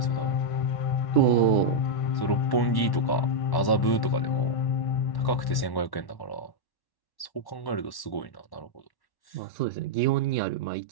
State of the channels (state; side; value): late; right; 1.1 ms